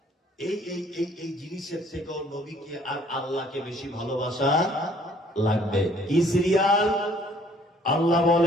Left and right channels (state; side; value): normal; both; correlation 0.59